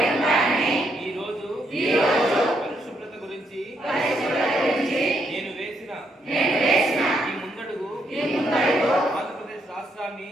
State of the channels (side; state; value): both; normal; correlation 0.76